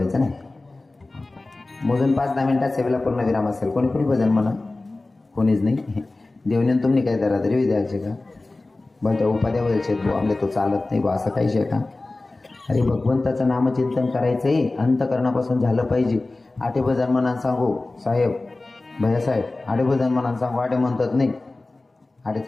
नाही. मोजून 5-10 मिनिटात सेवेला पूर्ण विराम असेल. कोणी कोणी भजन म्हणा. कोणीच नाही. देवने तुम्ही काय दरादरी द्यायचे का? बरं त्या उपाध्या बोलायचे तो आमले तो चालत नाही बा, असं काहीच आहे का? अरे भगवंताचं नामचिंतन करायचंय, अंतकरणापासून झालं पाहिजे. आठे भजन म्हणा सांगू साहेब, भैयासाहेब, आठे भजन म्हणा सांगू. आठे म्हणतात नाही, आठे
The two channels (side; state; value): right; quieter; 3.1 dB